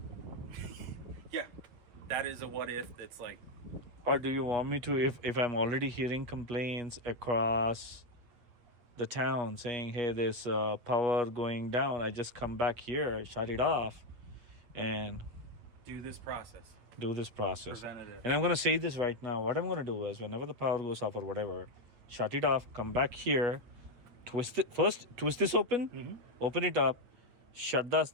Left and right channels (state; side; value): late; left; 8.3 ms